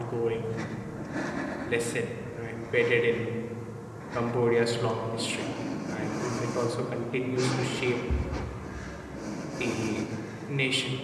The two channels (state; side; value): identical; both; correlation 1.00